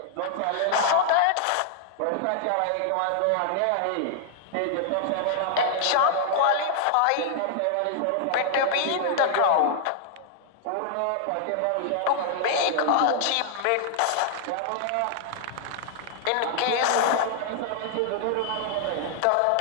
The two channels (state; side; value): different; both; correlation -0.01